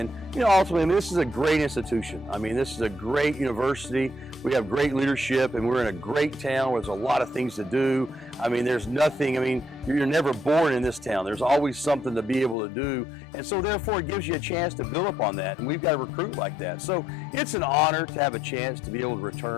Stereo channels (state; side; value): drops out; right; at 12.6 s